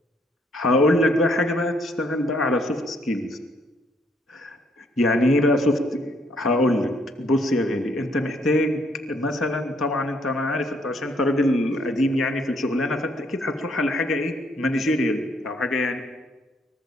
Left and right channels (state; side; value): normal; both; correlation 0.69